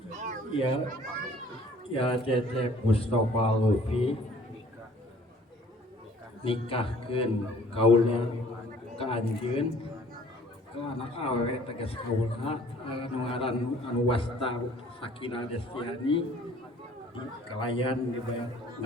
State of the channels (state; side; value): normal; both; correlation 0.54